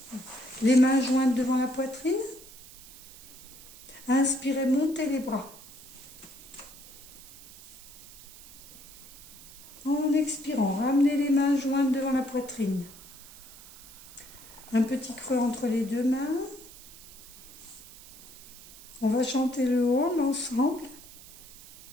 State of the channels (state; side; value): noise; right; hiss, 19 dB below the sound